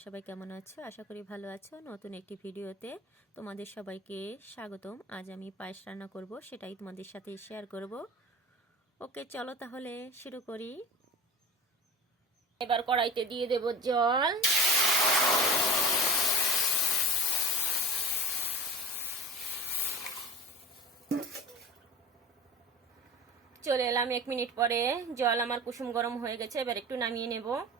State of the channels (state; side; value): normal; both; correlation 0.34